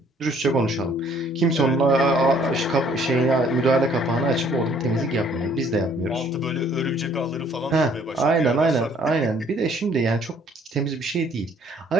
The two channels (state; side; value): normal; both; correlation 0.60